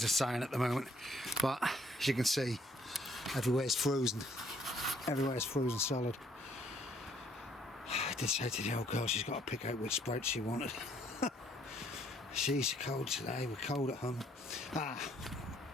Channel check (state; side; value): normal; both; correlation 0.65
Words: of sun at the moment, but as you can see, everywhere's frozen. Everywhere's frozen solid. I did say to the old girl she's got to pick out which sprouts she wanted. She's cold today, we're cold at home.